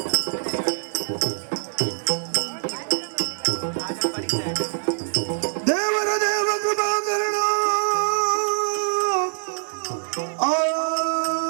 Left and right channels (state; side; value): silent; left; digital silence